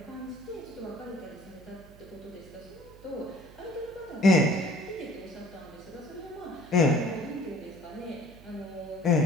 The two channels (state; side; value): noise; right; hum, 21 dB below the sound